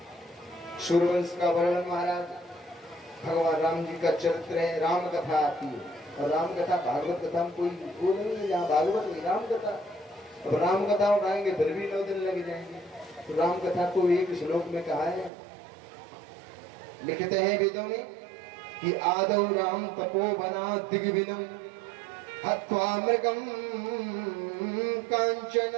सूर्यवंश का वर्णन, महाराज भगवान राम जी का चरित्र है, राम कथा आती है। और राम कथा भागवत कथा में कोई वो नहीं है, जहाँ भागवत में राम कथा। अब राम कथा उठाएंगे फिर भी 9 दिन लग जाएंगे। तो राम कथा को एक श्लोक में कहा है, लिखते हैं वेदों में कि आदौ राम तपोवना दिग्विनम हत्वा मृगम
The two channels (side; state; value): left; drops out; at 15.3 s